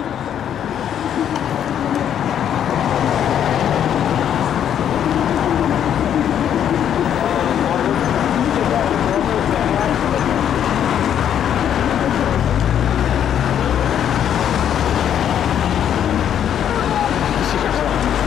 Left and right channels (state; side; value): quieter; right; 9.6 dB